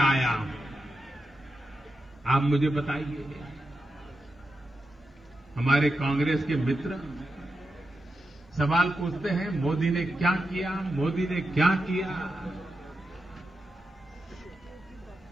आया हूं। आप मुझे बताइए, हमारे कांग्रेस के मित्र सवाल पूछते हैं, मोदी ने क्या किया, मोदी ने क्या किया।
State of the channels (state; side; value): normal; both; correlation 0.89